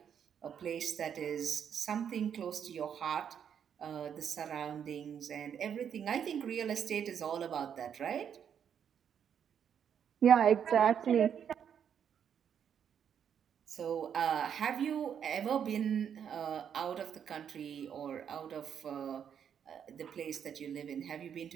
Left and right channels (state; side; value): quieter; left; 8.3 dB